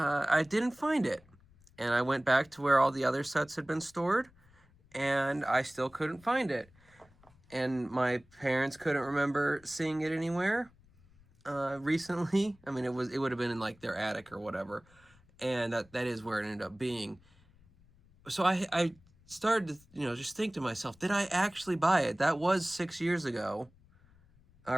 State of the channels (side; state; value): left; noise; rumble, 29 dB below the sound